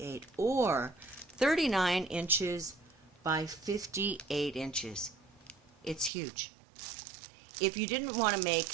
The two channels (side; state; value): left; drops out; at 6.1 s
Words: or 39 inches by 58 inches. It's huge. If you didn't want to make